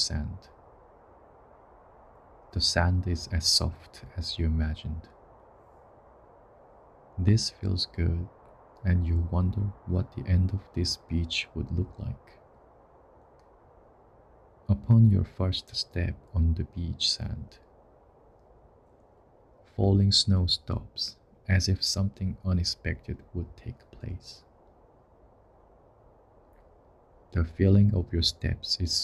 The sand is as soft as you imagined. This feels good, and you wonder what the end of this beach would look like. Upon your first step on the beach sand, falling snow stops as if something unexpected would take place. The feeling of your steps is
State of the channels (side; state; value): both; identical; correlation 1.00